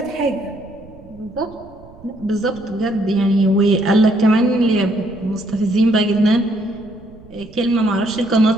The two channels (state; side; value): noise; right; rumble, 22 dB below the sound